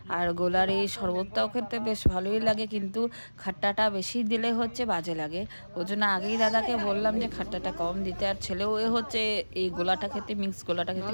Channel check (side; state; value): both; inverted; correlation -1.00